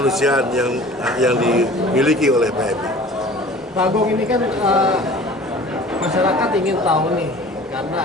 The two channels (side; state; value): both; normal; correlation 0.45